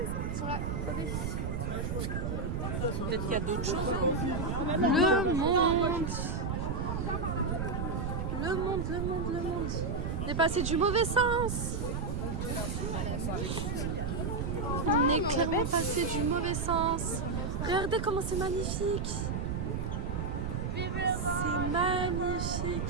Ils sont là. Attendez. Peut-être qu'il y a d'autres choses. Le monde. On est passé du mauvais sens. On est clairement passé du mauvais sens. Regardez comment c'est magnifique.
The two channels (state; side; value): noise; right; rumble, 1 dB below the sound